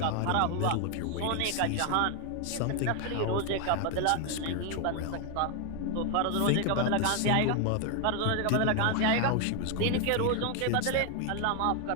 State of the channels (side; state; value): both; different; correlation 0.01